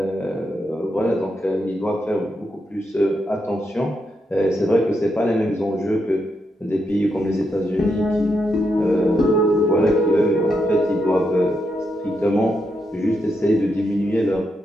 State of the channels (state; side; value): normal; both; correlation 0.82